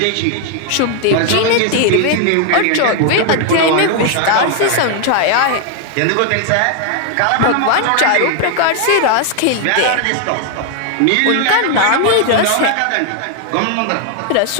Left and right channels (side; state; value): both; different; correlation 0.00